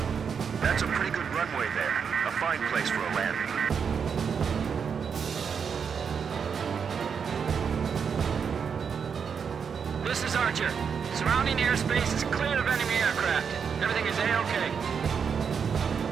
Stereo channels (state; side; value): quieter; left; 6.6 dB